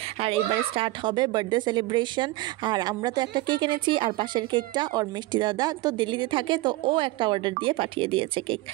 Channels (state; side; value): quieter; left; 19.4 dB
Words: আর এবারে স্টার্ট হবে বার্থডে সেলিব্রেশন। আর আমরা তো একটা কেক এনেছি, আর পাশের কেকটা ওর মিষ্টি দাদা তো দিল্লিতে থাকে, তো ও একটা অর্ডার দিয়ে পাঠিয়ে দিয়েছে কেক।